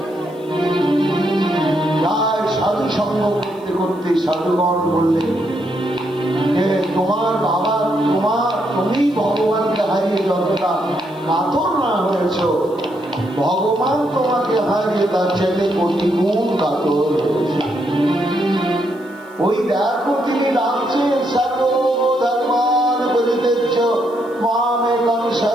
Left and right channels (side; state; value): left; noise; hiss, 29 dB below the sound